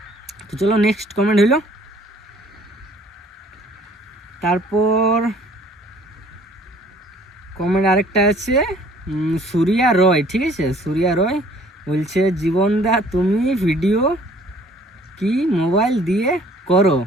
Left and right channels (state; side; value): normal; both; correlation 0.56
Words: তো চলো নেক্সট কমেন্ট হইল। তারপর কমেন্ট আরেকটা আছে সুরিয়া রয়, ঠিক আছে? সুরিয়া রয় বলছে জীবনদা তুমি ভিডিও কি মোবাইল দিয়ে করো?